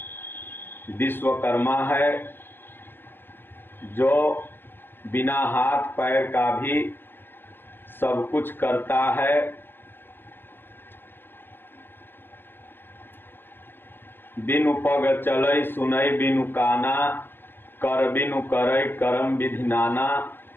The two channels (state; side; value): late; right; 0.097 ms